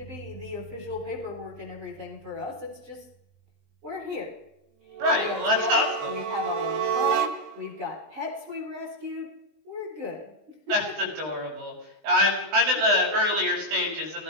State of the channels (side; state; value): left; late; 20 ms